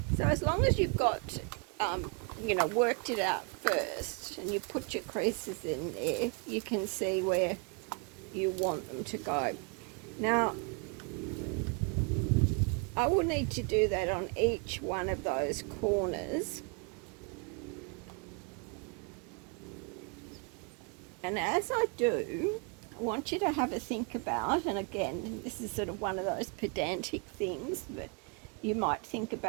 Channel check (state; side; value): quieter; left; 34.2 dB